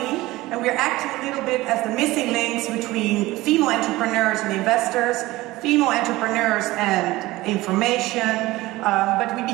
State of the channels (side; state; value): left; quieter; 18.7 dB